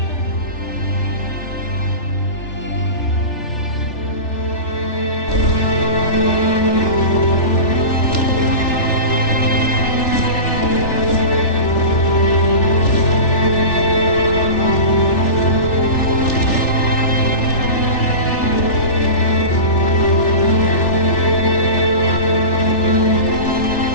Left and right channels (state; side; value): late; right; 3.4 ms